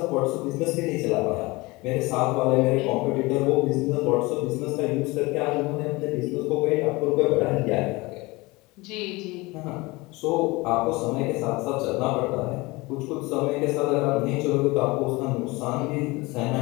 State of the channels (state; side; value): quieter; right; 23.1 dB